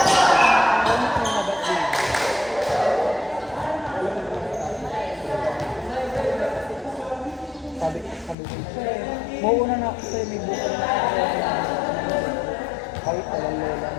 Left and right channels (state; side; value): drops out; right; at 8.3 s